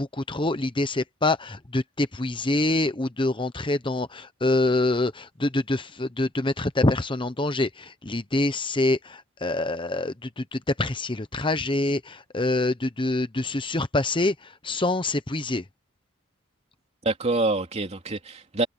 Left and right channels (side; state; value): both; normal; correlation 0.60